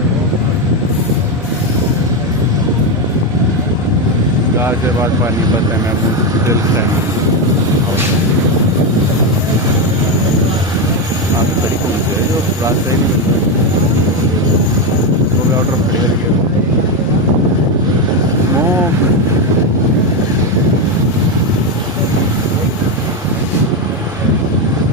Ghaziabad पानीपत है महमूद दिल टाइम आप बड़ी कौन सी है जो रास्ता ही नहीं मिलता वो भी आउट ऑफ क्लियर गया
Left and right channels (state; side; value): noise; right; hum, 29 dB below the sound